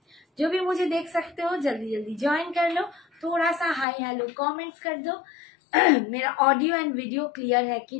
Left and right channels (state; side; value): drops out; right; at 3.9 s